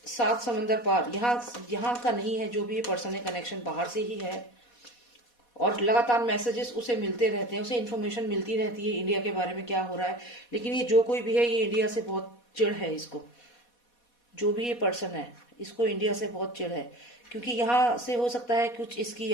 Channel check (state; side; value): late; right; 4.2 ms